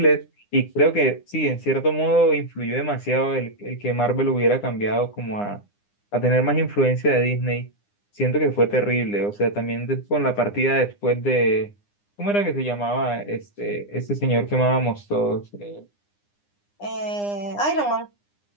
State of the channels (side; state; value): right; late; 9.8 ms